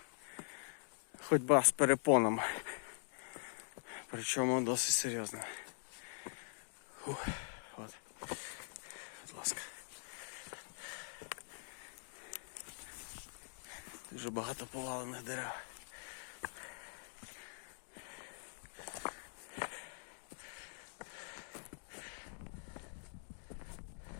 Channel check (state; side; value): silent; right; digital silence